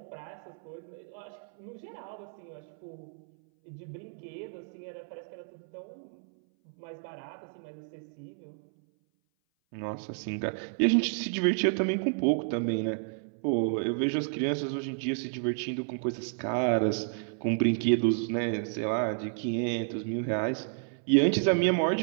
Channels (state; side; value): silent; left; 57 dB below the other